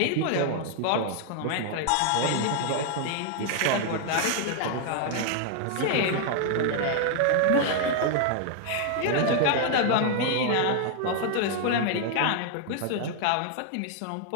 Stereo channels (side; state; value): both; different; correlation 0.00